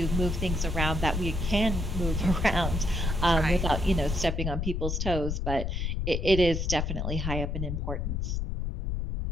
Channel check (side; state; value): left; noise; rumble, 1 dB below the sound